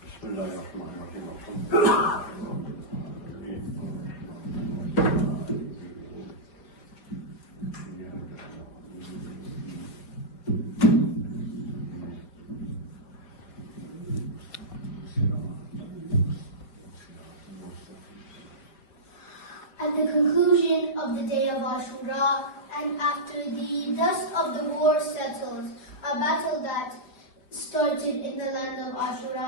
At the conclusion of the day of Ashura, and after the dust of the war settles, a battle that started in the land of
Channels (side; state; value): right; late; 4.5 ms